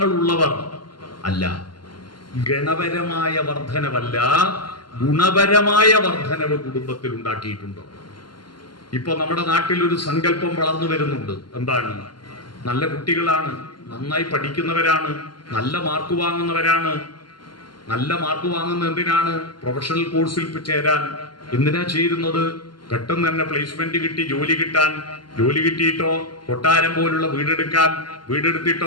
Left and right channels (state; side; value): late; right; 0.71 ms